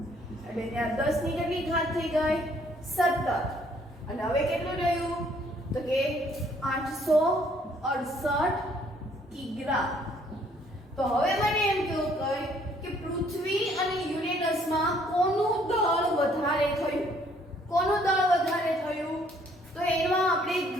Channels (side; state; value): both; normal; correlation 0.63